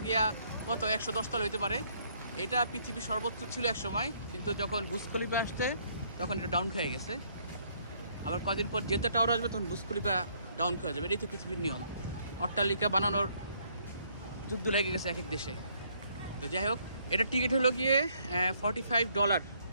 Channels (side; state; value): both; inverted; correlation -0.67